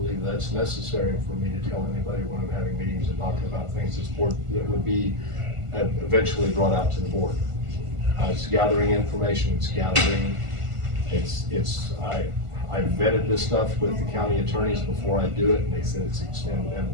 that's necessary for me to tell anybody when I'm having meetings and talking about things that would be eventually brought out to the board. It's gathering information, I vetted this stuff with the county attorneys before I do it, and they said it's, and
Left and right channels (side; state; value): left; late; 1.5 ms